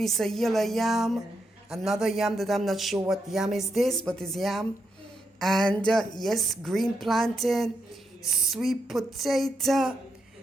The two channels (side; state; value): both; normal; correlation 0.81